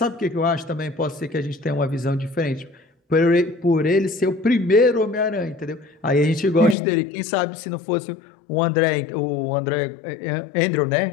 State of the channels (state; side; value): drops out; right; at 6.8 s